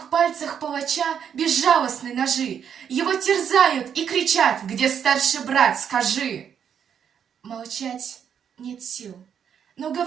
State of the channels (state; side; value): quieter; left; 8.1 dB